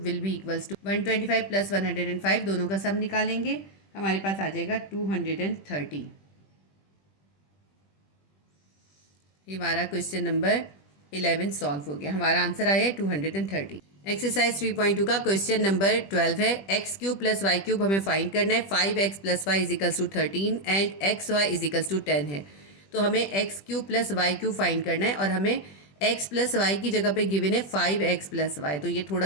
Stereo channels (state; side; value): late; right; 20 ms